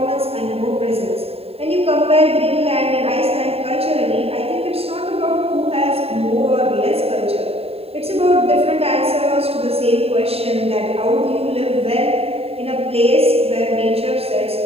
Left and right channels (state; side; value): late; left; 0.29 ms